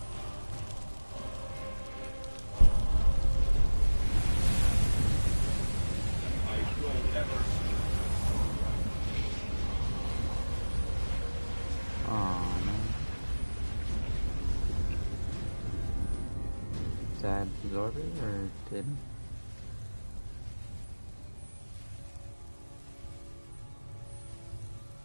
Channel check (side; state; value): both; inverted; correlation -1.00